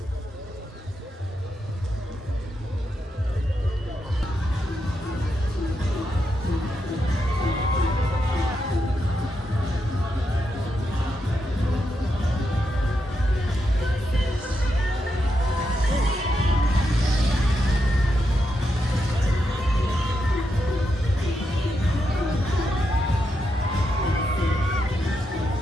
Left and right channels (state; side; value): normal; both; correlation 0.84